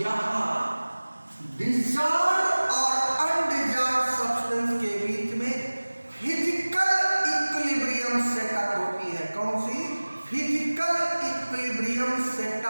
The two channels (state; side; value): inverted; both; correlation -1.00